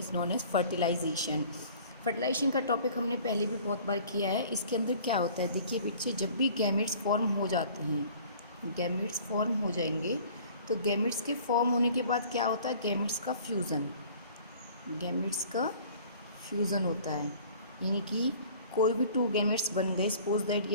known as fertilisation. Fertilisation का टॉपिक हमने पहले भी बहुत बार किया है। इसके अंदर क्या होता है, देखिए बच्चे, जब भी गैमेट्स फॉर्म हो जाते हैं, गैमेट्स फॉर्म हो जाएंगे तो गैमेट्स के फॉर्म होने के बाद क्या होता है, गैमेट्स का फ्यूज़न, गैमेट्स का फ्यूज़न होता है। यानी कि कोई भी टू गैमेट्स बन गए, सपोज दैट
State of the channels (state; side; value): inverted; both; correlation -0.50